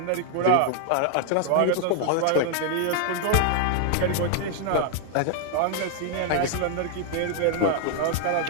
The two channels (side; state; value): both; different; correlation 0.00